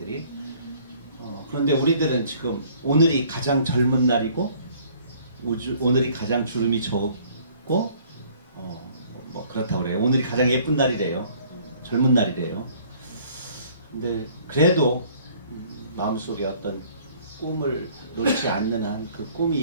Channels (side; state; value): both; inverted; correlation -0.57